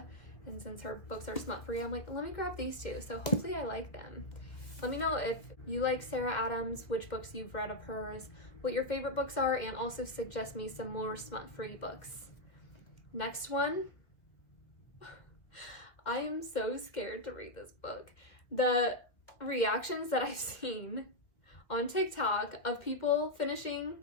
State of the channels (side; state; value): right; late; 2.1 ms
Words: and since her books are smut free, I'm like, let me grab these two. So hopefully I like them. Let me know if you like Sarah Adams, which books you've read of hers, what your favorite books are, and also suggest me some more smut-free books. Next one. I am so scared to read this book. The reactions that I've seen on TikTok of people finishing